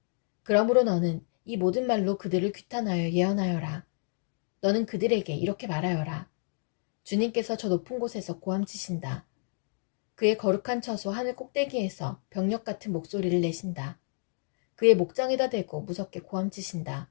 그러므로 너는 이 모든 말로 그들을 규탄하여 예언하여라. 너는 그들에게 이렇게 말하여라. 주님께서 저 높은 곳에서 고함치신다. 그의 거룩한 처소 하늘 꼭대기에서 병력 같은 목소리를 내신다. 그의 목장에다 대고 무섭게 고함치신다.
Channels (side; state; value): right; silent; digital silence